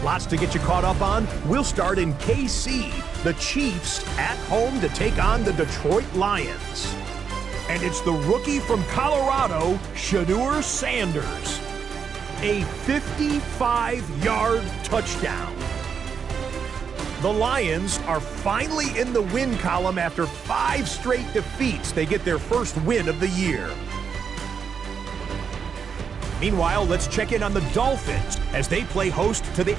Lots to get you caught up on. We'll start in KC. The Chiefs at home to take on the Detroit Lions. And it's the rookie from Colorado, Shedeur Sanders. A 55-yard touchdown. The Lions are finally in the win column after 5 straight defeats. They get their first win of the year. Meanwhile, let's check in on the Dolphins as they play host to the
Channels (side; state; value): left; quieter; 6.6 dB